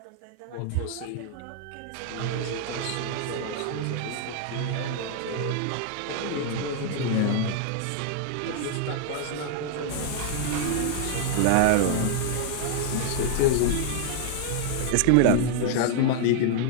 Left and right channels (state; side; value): different; both; correlation -0.01